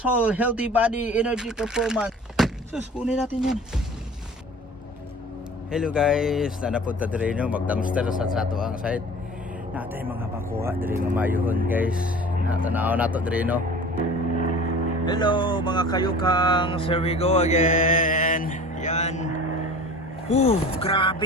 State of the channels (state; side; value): normal; both; correlation 0.42